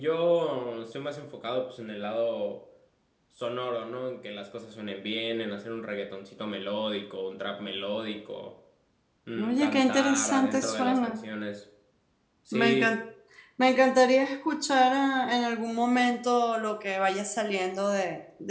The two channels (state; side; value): identical; both; correlation 1.00